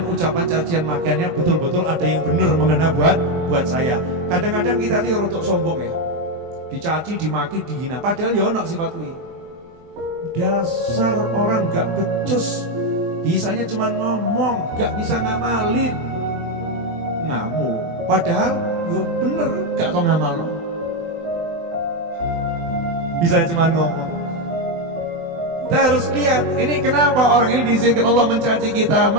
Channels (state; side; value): late; left; 24 ms